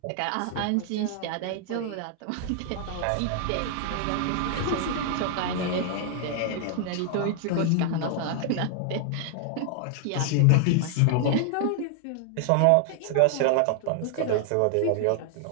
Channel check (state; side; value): different; both; correlation 0.00